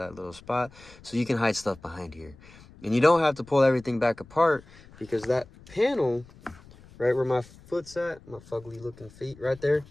little spot. So you can hide stuff behind here. And you don't have to pull everything back apart, because that panel, right where my foot's at, my fugly looking feet right there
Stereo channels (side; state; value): left; noise; rumble, 23 dB below the sound